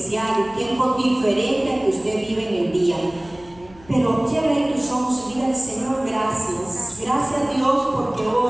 un tiempo diferente al que usted vive en el día. Pero cierre tus ojos y dígale: Señor, gracias. Gracias, Dios, porque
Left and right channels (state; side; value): noise; left; hum, 24 dB below the sound